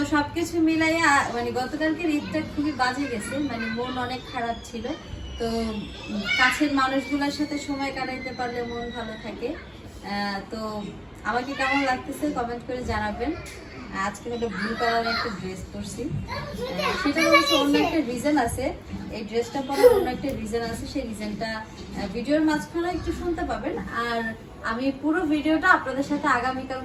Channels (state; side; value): identical; both; correlation 1.00